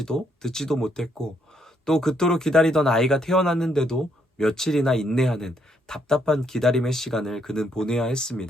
듣지도 못했고, 또 그토록 기다리던 아이가 태어났는데도 며칠이나 인내하는 답답한 기다림의 시간을 그는 보내야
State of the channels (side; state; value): both; normal; correlation 0.73